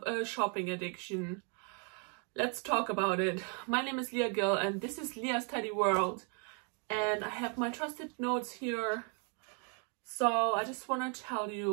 a shopping addiction. Let's talk about it. My name is Leah Gill and this is Leah's Teddy World. And I have my trusted notes here. So I just want to tell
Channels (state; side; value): quieter; left; 38.6 dB